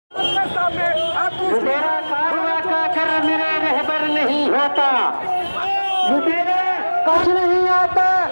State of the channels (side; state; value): both; inverted; correlation -1.00